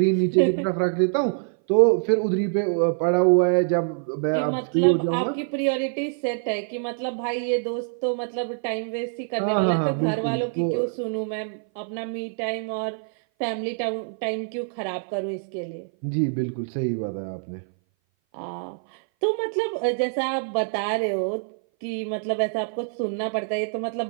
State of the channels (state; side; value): silent; left; 58 dB below the other